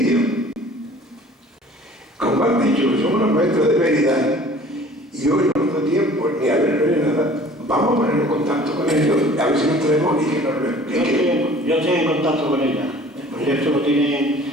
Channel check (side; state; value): both; normal; correlation 0.49